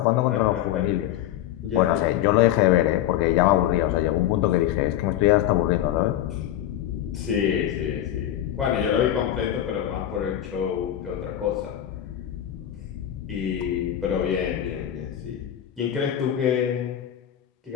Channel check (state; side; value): quieter; right; 11.8 dB